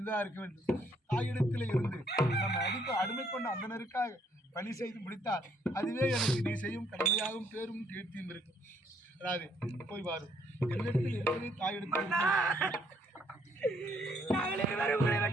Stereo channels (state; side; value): normal; both; correlation 0.68